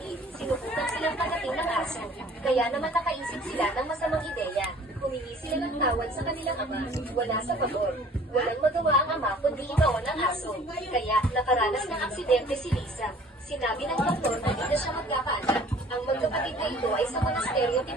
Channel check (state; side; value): normal; both; correlation 0.51